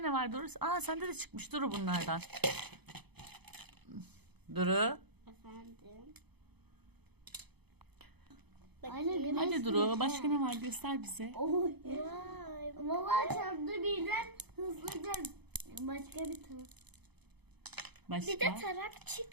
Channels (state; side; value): late; left; 0.98 ms